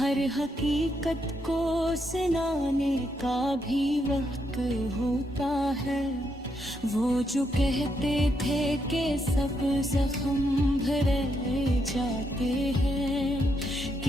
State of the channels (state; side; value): normal; both; correlation 0.79